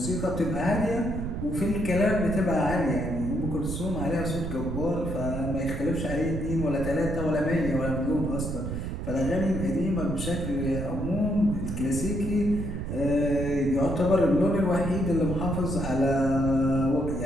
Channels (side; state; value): right; noise; rumble, 4 dB below the sound